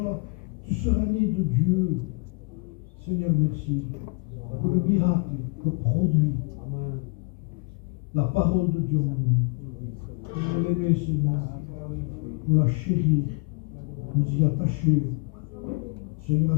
Tu seras né de Dieu. Seigneur, merci pour le miracle que produit la parole de Dieu en nous. Nous l'aimer, Seigneur, nous la chérir, nous y attacher. Seigneur,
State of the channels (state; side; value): quieter; right; 31.6 dB